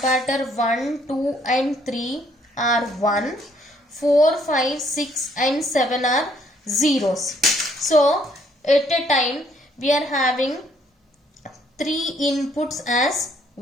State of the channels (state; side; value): normal; both; correlation 0.66